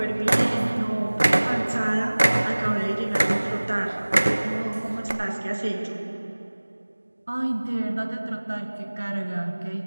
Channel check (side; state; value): both; inverted; correlation -1.00